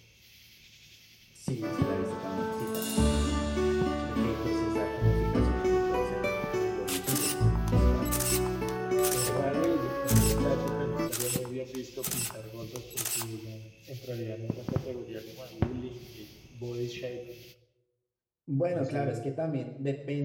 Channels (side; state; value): both; identical; correlation 1.00